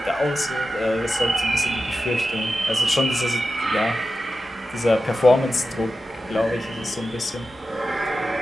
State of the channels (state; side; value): normal; both; correlation 0.92